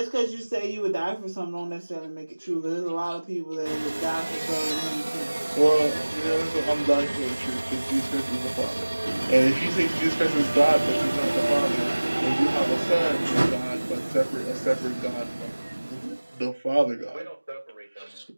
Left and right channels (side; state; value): both; inverted; correlation -1.00